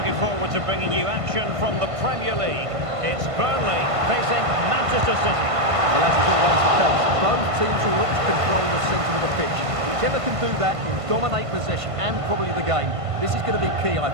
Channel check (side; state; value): left; late; 1.5 ms